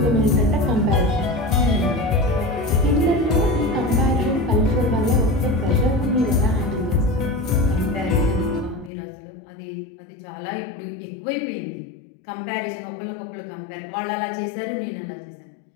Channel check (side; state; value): right; drops out; at 8.9 s